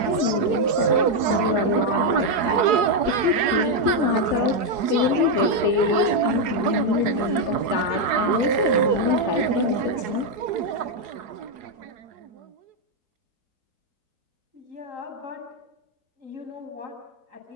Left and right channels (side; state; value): left; late; 4.7 ms